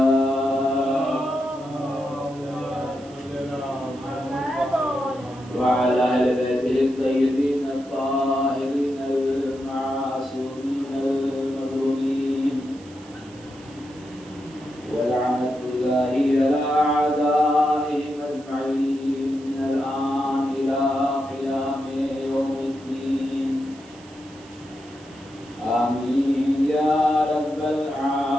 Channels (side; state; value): right; noise; hiss, 24 dB below the sound